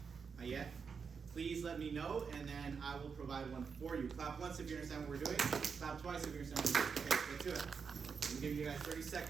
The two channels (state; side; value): quieter; left; 5.8 dB